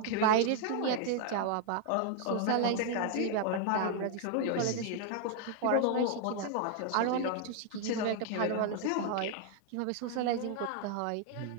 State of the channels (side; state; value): both; different; correlation 0.00